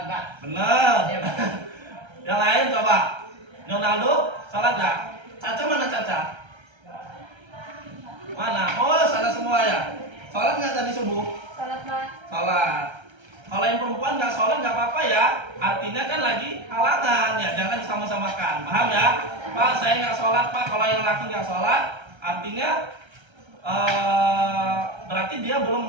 Bener. Yang lain coba. Ronaldo sholat nggak? Caca mana Caca? Mana? Oh sana semua ya. Sholat nggak tadi subuh? Salat, Pak. Sholat. Kalau yang perempuan nggak sholat nggak apa-apa ya. Artinya kan lagi halangan ya. Jangan disama-samakan. Paham ya? Pak saya nggak sholat Pak. Kalau yang laki nggak sholat, artinya berarti dia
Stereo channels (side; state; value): left; late; 1.3 ms